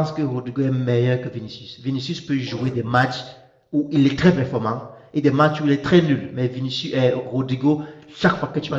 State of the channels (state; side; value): identical; both; correlation 1.00